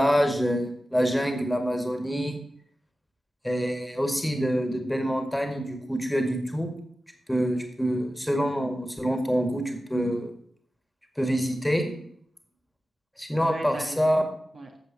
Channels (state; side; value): normal; both; correlation 0.94